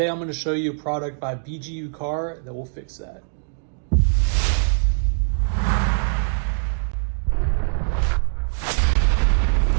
I'm going to show you a product by BGUCAR that will fix that.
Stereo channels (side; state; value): left; silent; digital silence